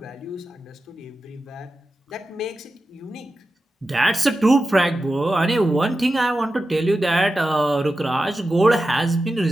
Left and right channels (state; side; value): normal; both; correlation 0.92